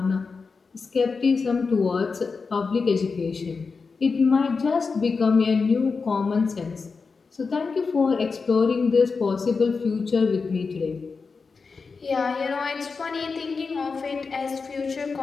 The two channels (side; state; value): right; quieter; 4.7 dB